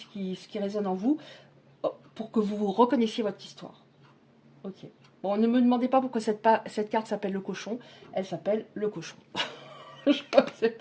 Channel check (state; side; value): identical; both; correlation 1.00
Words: qui résonne en vous pour que vous reconnaissiez votre histoire. Ok. Bon, ne me demandez pas pourquoi cette carte s'appelle le cochon. Elle s'appelle le cochon. Je ne sais